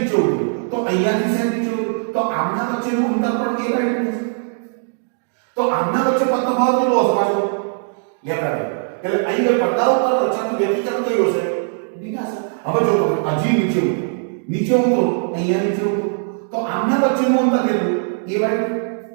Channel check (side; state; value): left; silent; digital silence